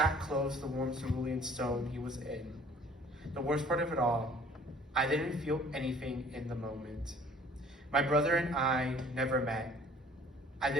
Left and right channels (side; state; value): both; normal; correlation 0.52